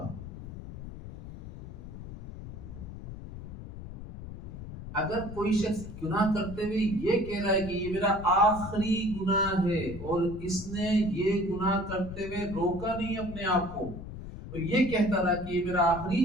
اگر کوئی شخص گناہ کرتے ہوئے یہ کہہ رہا ہے کہ یہ میرا آخری گناہ ہے، اور اس نے یہ گناہ کرتے ہوئے روکا نہیں اپنے آپ کو، اور یہ کہتا رہا کہ یہ میرا آخری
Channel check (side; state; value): left; noise; rumble, 11 dB below the sound